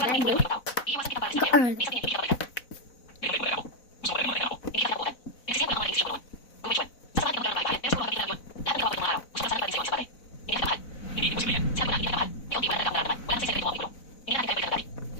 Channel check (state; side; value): late; right; 4.0 ms